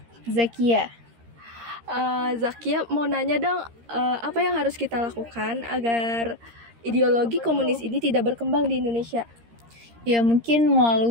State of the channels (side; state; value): left; late; 13 ms